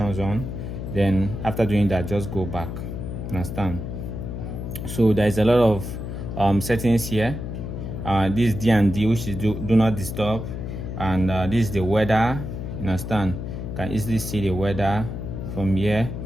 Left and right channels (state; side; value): noise; left; hum, 6 dB below the sound